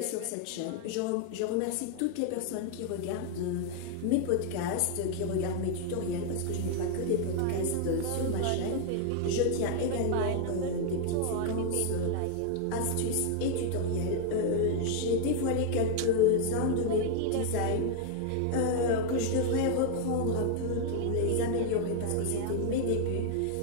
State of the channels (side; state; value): both; different; correlation 0.00